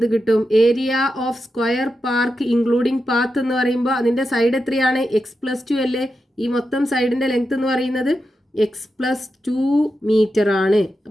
കിട്ടും? Area of square park including path എന്ന് പറയുമ്പോൾ അതിന്റെ സൈഡ് എത്രയാണ്? എക്സ് + 2 അല്ലേ? ഈ മൊത്തം സൈഡിന്റെ ലെങ്ത് എന്ന് പറയുന്നത് എക്സ് + 2 മീറ്റർ ആണ്.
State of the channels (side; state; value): both; normal; correlation 0.88